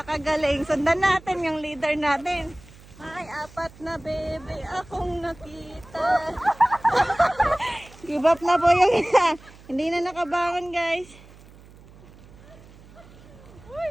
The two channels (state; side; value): noise; right; hum, 22 dB below the sound